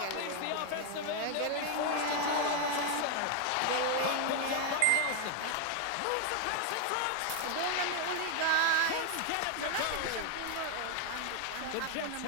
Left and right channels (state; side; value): different; both; correlation 0.00